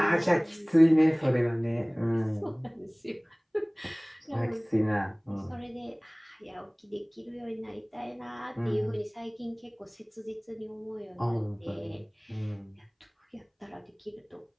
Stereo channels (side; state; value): both; identical; correlation 1.00